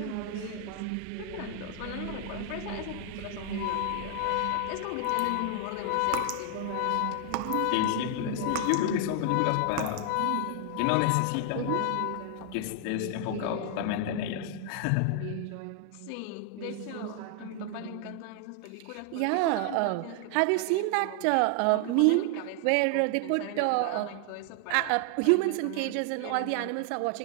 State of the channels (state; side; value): different; both; correlation 0.00